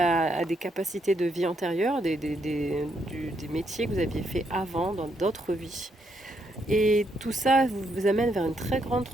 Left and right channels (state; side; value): normal; both; correlation 0.76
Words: des capacités de vie antérieures, des métiers que vous aviez fait avant dans d'autres vies. Et tout ça vous amène vers une très grande